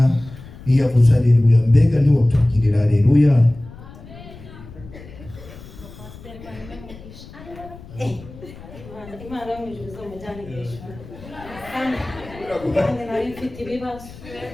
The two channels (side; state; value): left; noise; rumble, 17 dB below the sound